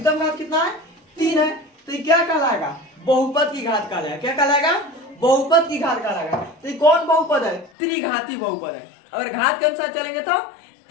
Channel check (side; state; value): right; drops out; at 7.7 s